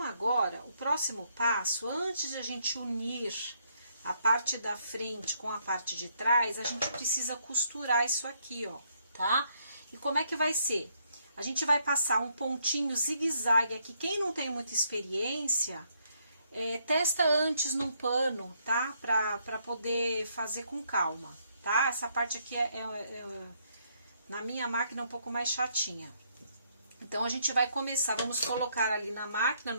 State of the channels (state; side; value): inverted; both; correlation -0.72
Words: agora, o próximo passo, antes de a gente unir a parte da frente com a parte de trás, a gente precisa costurar isso aqui, ó, tá? E como é que vai ser? A gente vai passar um pontinho zigue-zague aqui. Quem não tem muita experiência, testa antes num pano, tá? Pra poder fazer com calma, tá? Essa parte aqui na minha máquina é um pouco mais chatinha. Então, a gente vai começar, vamos colocar ali na máquina,